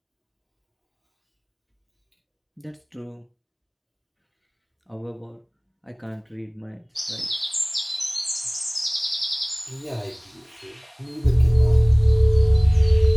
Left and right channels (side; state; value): both; identical; correlation 1.00